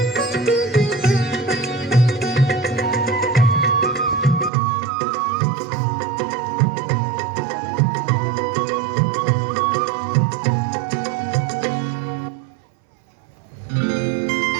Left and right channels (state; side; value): drops out; left; at 4.5 s